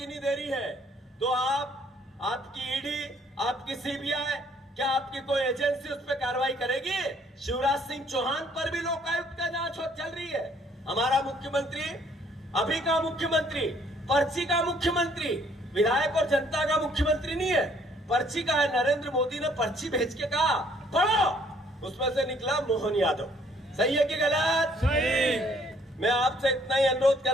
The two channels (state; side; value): normal; both; correlation 0.63